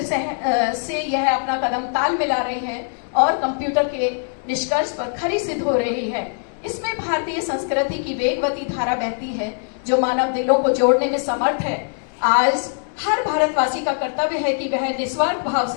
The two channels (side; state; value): right; silent; 60 dB below the other